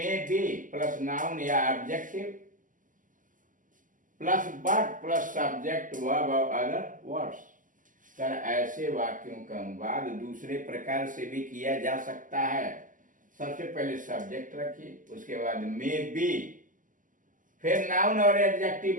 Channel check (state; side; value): late; left; 0.38 ms